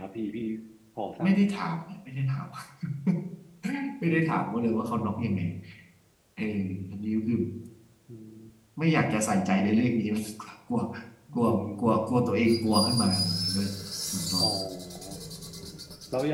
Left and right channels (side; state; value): both; identical; correlation 1.00